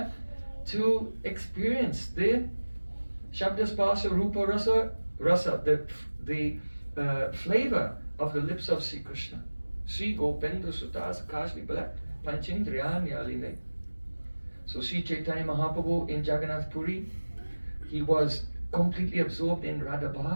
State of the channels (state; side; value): inverted; both; correlation -1.00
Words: to experience the Shabda Spasa Rupa Rasa, the flavor of the lips of Sri Krishna. Sri Gopendra Sutas Kashli Balak Panchindriya Nyaline. So Sri Caitanya Mahaprabhu in Jagannath Puri, he was completely absorbed in Radha